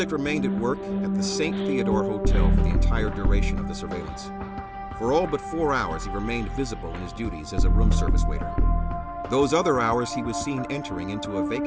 remained at work at the St. Theodore Hotel for the entire duration of the surveillance. For all but 4 hours, he remained visible in his duties as a room service waiter. Those other hours, he was seen entering into a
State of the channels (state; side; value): identical; both; correlation 1.00